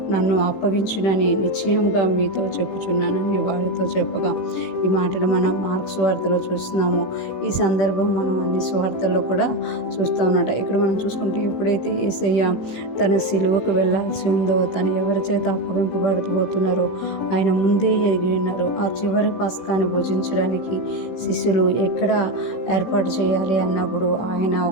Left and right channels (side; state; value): right; late; 16 ms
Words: నన్ను అప్పగించునని నిశ్చయంగా మీతో చెప్పుచున్నానని వారితో చెప్పగా, ఈ మాటలు మనం మార్కు సువార్తలో చూస్తున్నాము. ఈ సందర్భం మనం అన్ని సువార్తల్లో కూడా చూస్తూ ఉన్నట. ఇక్కడ మనం చూసుకుంటే ఎప్పుడైతే యేసయ్య తన సిలువకు వెళ్ళాల్సి ఉందో, తను ఎవరి చేత అప్పగింపబడబోతున్నారో ఆయన ముందే ఎరిగి ఉన్నారు. ఆ చివరి పస్కాని భుజించడానికి శిష్యులు ఎక్కడ ఏర్పాటు చేయాలి అన్నప్పుడు ఆయన